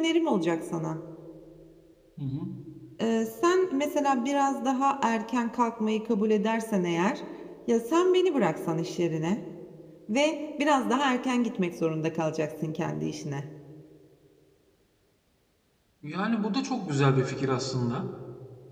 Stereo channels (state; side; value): identical; both; correlation 1.00